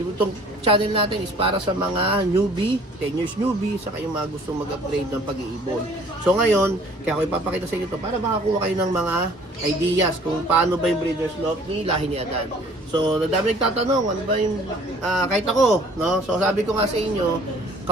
channel natin is para sa mga newbie, 10 years newbie, saka yung mga gustong mag-upgrade ng pag-iibon. So ngayon, kaya ako ipapakita sa inyo ito para makakuha kayo ng mga ideas kung paano ba yung Breeders' Loft ni Lahi ni Adan. So, nadami nagtatanong, ano ba yung, kahit ako, no? So, sabi ko nga sa inyo,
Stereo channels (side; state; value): both; normal; correlation 0.54